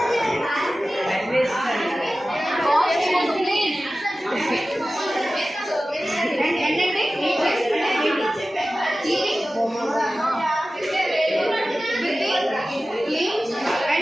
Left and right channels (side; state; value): both; normal; correlation 0.95